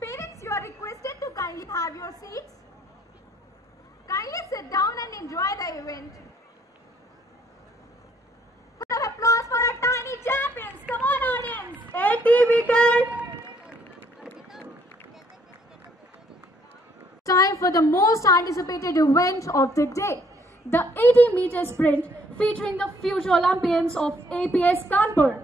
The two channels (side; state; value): both; normal; correlation 0.65